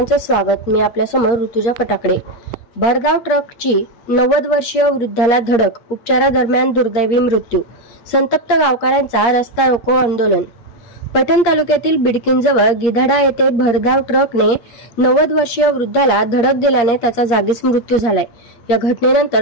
स्वागत। मी आपल्या समोर ऋतुजा फटाकडे। भरधाव ट्रकची 90 वर्षीय वृद्धाला धडक, उपचारादरम्यान दुर्दैवी मृत्यू, संतप्त गावकऱ्यांचा रस्ता रोको आंदोलन। पैठण तालुक्यातील बिडकीनजवळ गिधाडा येथे भरधाव ट्रकने 90 वर्षीय वृद्धाला धडक दिल्याने त्याचा जागीच मृत्यू झालाय। या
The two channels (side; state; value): right; late; 8.5 ms